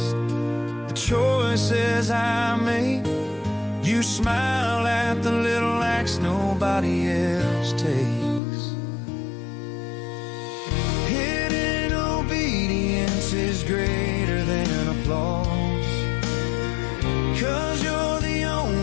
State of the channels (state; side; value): drops out; right; at 8.4 s